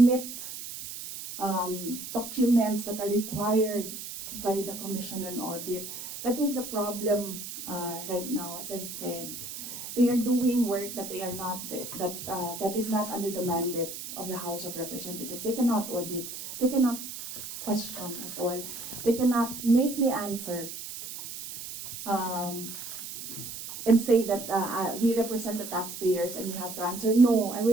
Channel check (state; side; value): noise; right; hiss, 9 dB below the sound